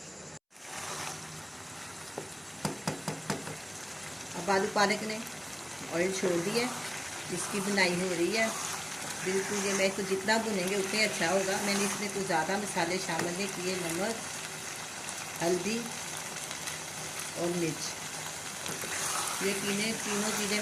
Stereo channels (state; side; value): identical; both; correlation 1.00